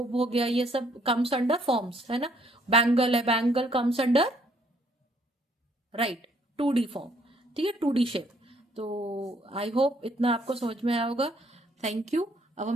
हो गया, ये सब कम्स अंडर फॉर्म्स, है ना। बैंगल है, bangle comes under, right, 2D form, ठीक है, 2D शेप। तो आई होप इतना आपको समझ में आया होगा। Thank you. अब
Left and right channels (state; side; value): normal; both; correlation 0.66